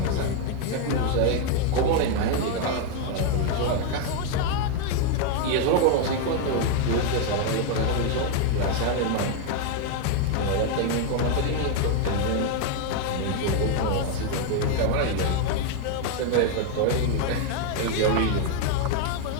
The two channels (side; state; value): both; different; correlation 0.01